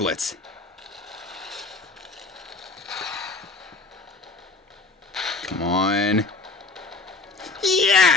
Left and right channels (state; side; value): quieter; right; 3.6 dB